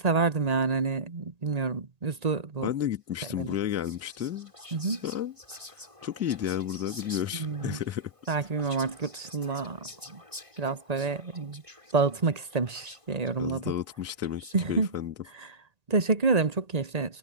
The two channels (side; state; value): left; late; 1.6 ms